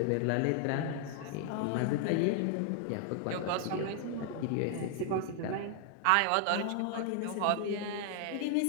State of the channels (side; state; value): both; different; correlation 0.00